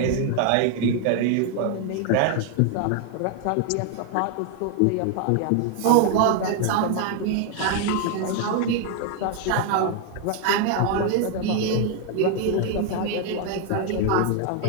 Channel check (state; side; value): different; both; correlation 0.00